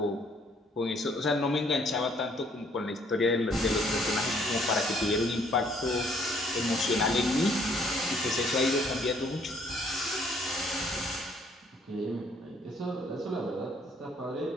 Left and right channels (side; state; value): both; normal; correlation 0.64